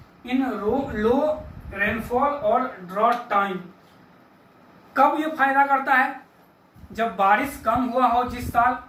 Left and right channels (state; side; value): identical; both; correlation 1.00